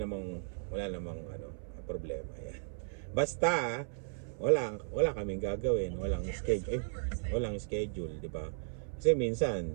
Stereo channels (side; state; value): left; silent; 54 dB below the other